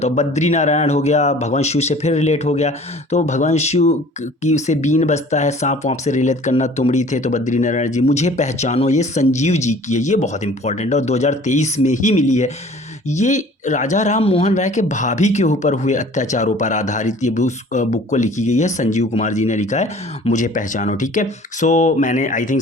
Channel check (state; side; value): normal; both; correlation 0.49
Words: बद्री नारायण हो गया, भगवान शिव से फिर रिलेट हो गया, तो भगवान शिव की से बीन बजता है, सांप वाँप से रिलेट करना, तुमड़ी थे तो बद्री नारायण जी। मुझे पहचानो, ये संजीव जी की है, ये बहुत इंपॉर्टेंट है और 2023 में ही मिली है। ये राजा राम मोहन राय के भाभी के ऊपर हुए अत्याचारों पर आधारित ये बुक को लिखी गई है, संजीव कुमार जी ने लिखा है, मुझे पहचानो। ठीक है, सो मैंने आई थिंक